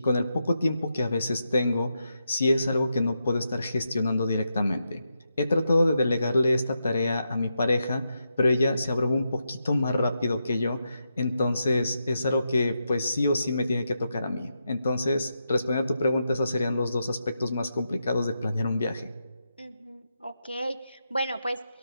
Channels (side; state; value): both; inverted; correlation -0.85